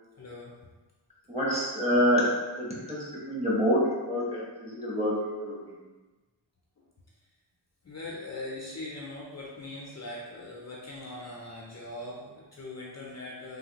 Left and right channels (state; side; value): normal; both; correlation 0.07